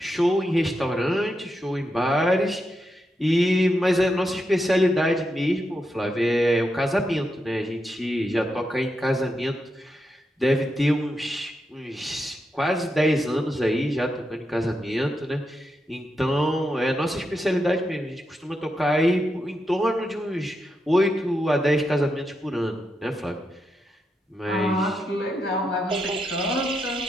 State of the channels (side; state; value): both; normal; correlation 0.85